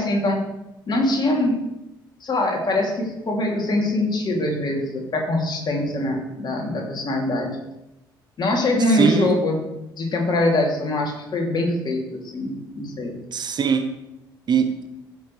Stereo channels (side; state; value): both; normal; correlation 0.58